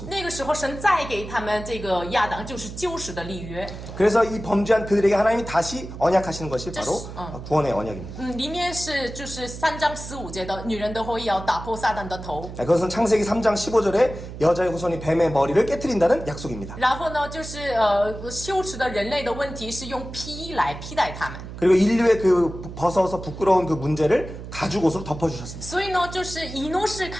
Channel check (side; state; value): right; noise; hum, 11 dB below the sound